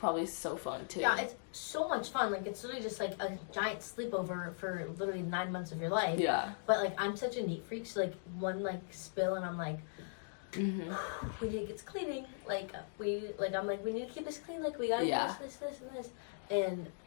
so fun too. Yeah, it's so much fun. Like, it's literally just like a giant sleepover for literally 9 months of your life. Yeah. But like, I'm such a neat freak, so like one like spill and I'm like, we need to get cleaning. Like I'm like, we need to keep this clean. Like, we gotta do this, and this. And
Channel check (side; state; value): right; silent; digital silence